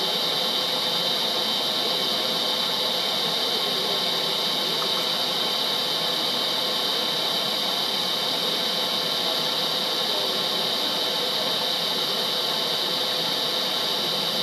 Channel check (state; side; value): identical; both; correlation 1.00